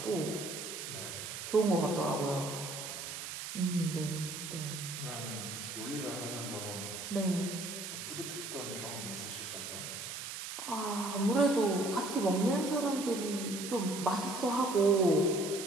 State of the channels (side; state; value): right; noise; hiss, 7 dB below the sound